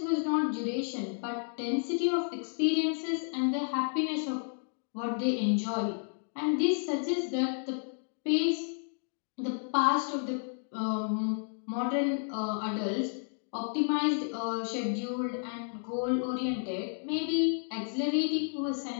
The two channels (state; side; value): silent; right; 57 dB below the other